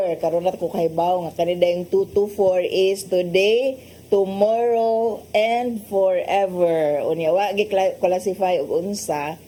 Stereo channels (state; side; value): identical; both; correlation 1.00